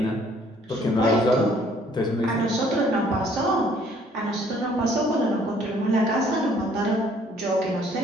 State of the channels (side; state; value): both; normal; correlation 0.60